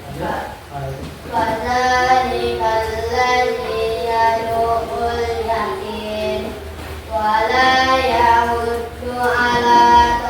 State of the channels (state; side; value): identical; both; correlation 1.00